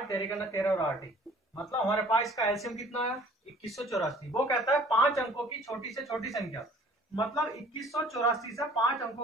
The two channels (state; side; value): normal; both; correlation 0.52